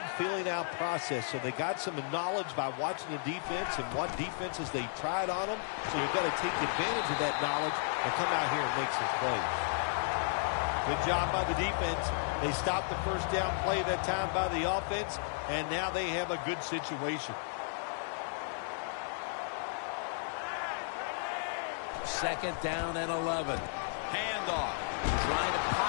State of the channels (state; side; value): silent; right; digital silence